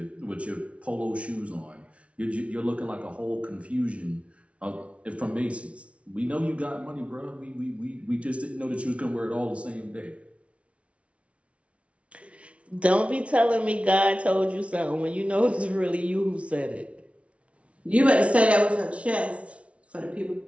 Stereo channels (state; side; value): late; left; 0.062 ms